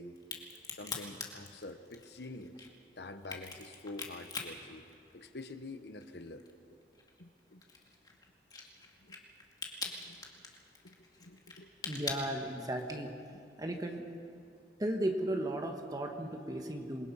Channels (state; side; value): normal; both; correlation 0.53